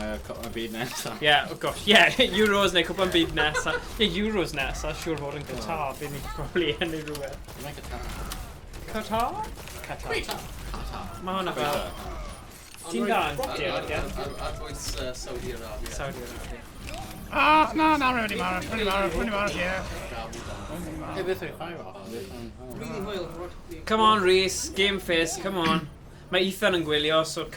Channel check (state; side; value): identical; both; correlation 1.00